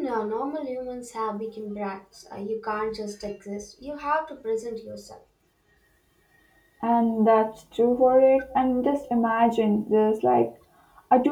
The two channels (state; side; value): identical; both; correlation 1.00